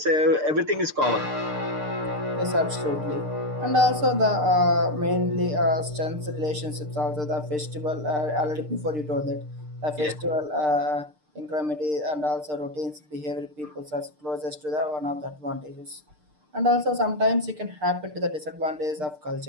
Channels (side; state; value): left; late; 6.6 ms